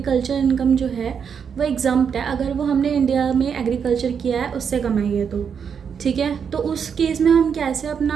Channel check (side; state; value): left; quieter; 7.0 dB